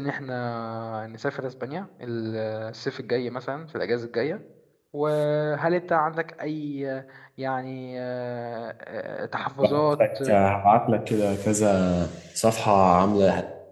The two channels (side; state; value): both; identical; correlation 1.00